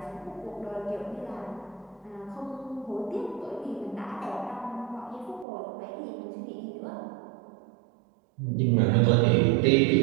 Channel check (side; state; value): left; drops out; at 5.5 s